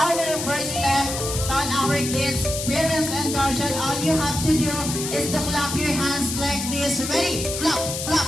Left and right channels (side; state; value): left; noise; hiss, 5 dB below the sound